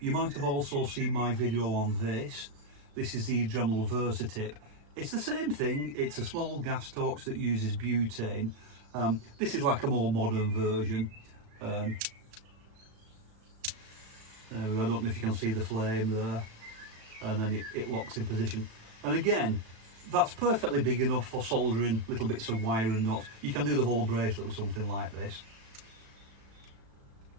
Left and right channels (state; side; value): late; left; 36 ms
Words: might have also seen my video on this. This is the Dremel Versatip. It's the same thing. It's a small gas torch that uses butane. This is like a more modern version. There we go. I don't know if you can see the flame there. And then it locks in position. And again, that's perfectly big enough for soldering little bits of wire and nuts. You can do the whole bracelet with something like this.